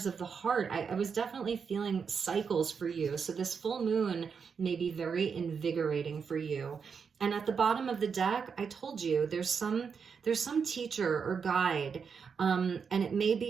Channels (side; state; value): left; quieter; 6.1 dB